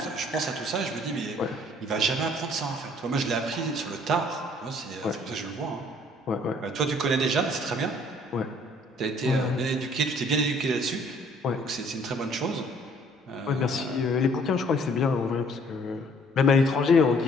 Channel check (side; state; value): both; normal; correlation 0.59